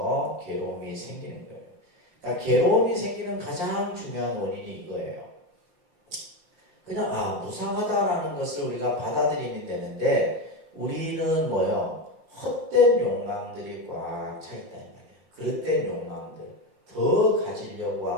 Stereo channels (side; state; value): left; late; 5.7 ms